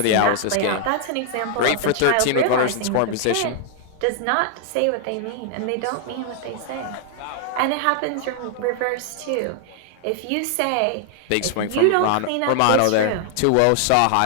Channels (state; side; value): different; both; correlation 0.00